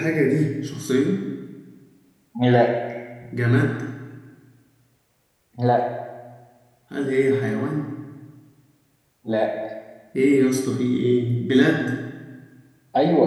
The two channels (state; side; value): identical; both; correlation 1.00